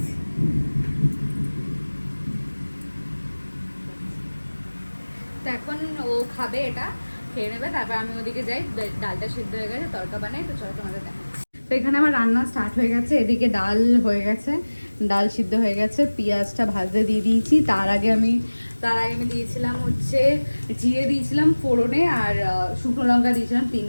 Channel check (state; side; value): inverted; both; correlation -1.00